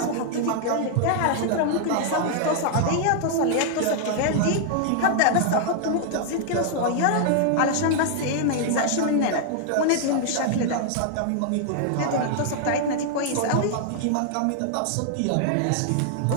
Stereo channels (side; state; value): both; different; correlation 0.00